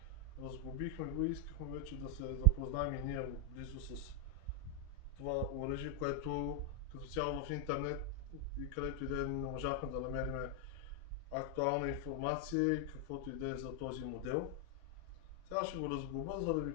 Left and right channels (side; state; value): both; normal; correlation 0.01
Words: разглобихме го и искахме вече да се запознаем и ние близо с това оръжие, което като цяло в интернет и където и да не можахме да намерим актуална информация и каквото и да е за този модел. Сега ще го разглоба, за да ви